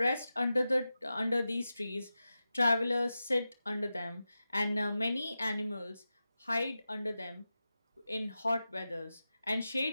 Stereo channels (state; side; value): inverted; both; correlation -0.93